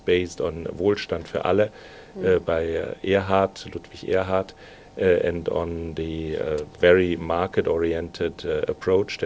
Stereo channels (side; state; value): both; identical; correlation 1.00